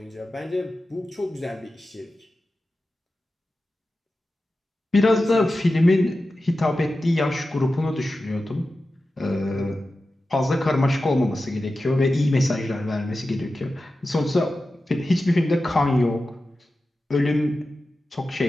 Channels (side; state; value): both; normal; correlation 0.93